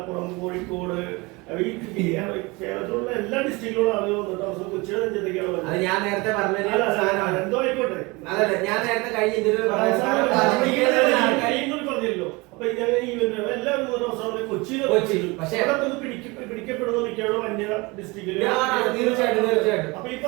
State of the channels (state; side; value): quieter; left; 25.0 dB